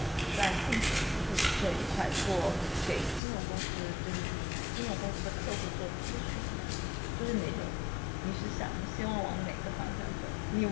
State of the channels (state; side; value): drops out; right; at 3.2 s